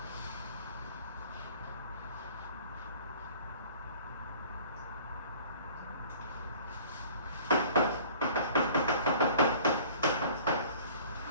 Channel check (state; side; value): inverted; both; correlation -0.49